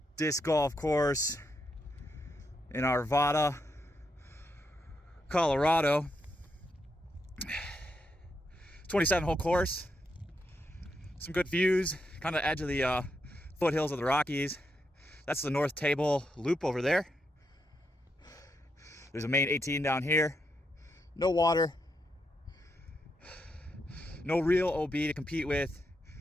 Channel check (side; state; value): both; normal; correlation 0.82